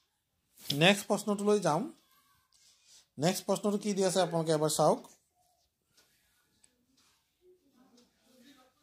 নেক্সট প্ৰশ্নটোলৈ যাম। নেক্সট প্ৰশ্নটো কি দি আছে আপোনালোকে এবাৰ চাওক।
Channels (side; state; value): both; identical; correlation 1.00